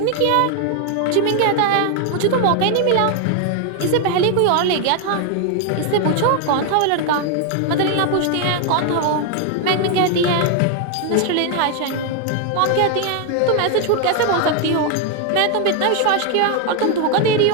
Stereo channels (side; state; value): both; different; correlation 0.01